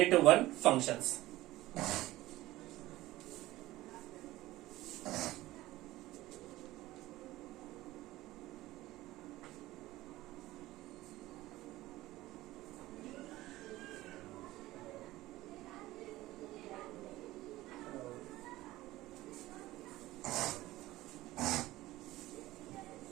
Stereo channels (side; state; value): left; quieter; 17.2 dB